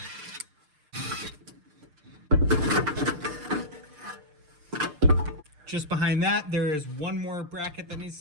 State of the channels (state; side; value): late; left; 6.6 ms